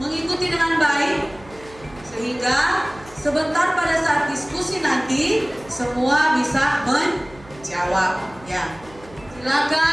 dengan baik sehingga sebentar pada saat diskusi nanti semua bisa menjawab ya.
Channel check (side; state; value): right; noise; hum, 22 dB below the sound